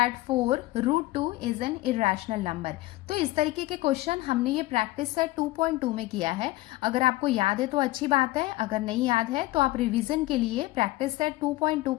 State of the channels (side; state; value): right; quieter; 18.5 dB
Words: 4 root 2 is an irrational number. तो इस तरीके के क्वेश्चन हमने ये प्रैक्टिस सेट 2.2 में किया है। अगर आपको याद है तो अच्छी बात है, अगर नहीं याद है तो आप रिवीजन के लिए प्रैक्टिस सेट 2.2